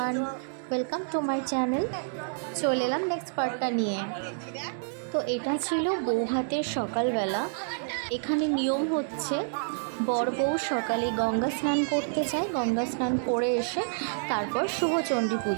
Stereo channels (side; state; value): left; silent; digital silence